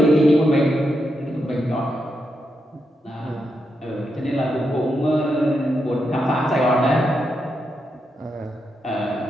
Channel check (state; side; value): normal; both; correlation 0.84